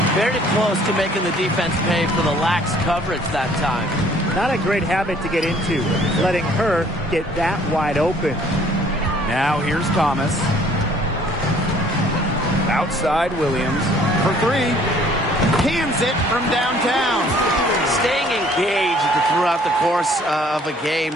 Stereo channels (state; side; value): normal; both; correlation 0.57